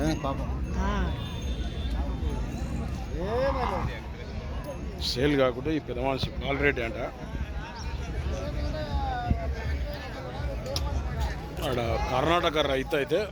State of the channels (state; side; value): identical; both; correlation 1.00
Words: సేల్ కాకుండా ఈ పెద్ద మనిషి బాలరెడ్డి అంట. ఆడ కర్ణాటక రైతు అయితే